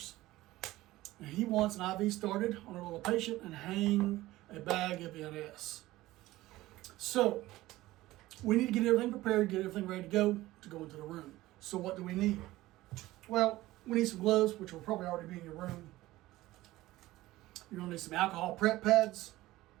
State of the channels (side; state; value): left; quieter; 17.3 dB